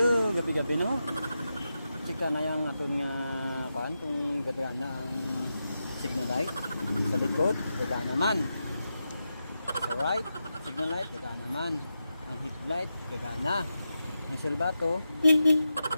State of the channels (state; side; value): inverted; both; correlation -0.89